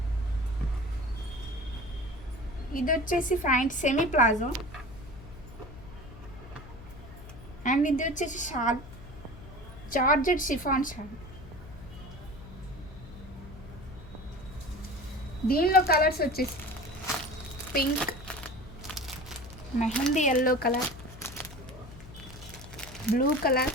ఇది వచ్చేసి ప్యాంట్ సెమీ ప్లాజో అండ్ ఇది వచ్చేసి షాల్, జార్జెట్ షిఫాన్ షాల్. దీనిలో కలర్స్ వచ్చేసి pink, mehndi yellow colour, blue colour,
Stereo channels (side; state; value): left; noise; hum, 16 dB below the sound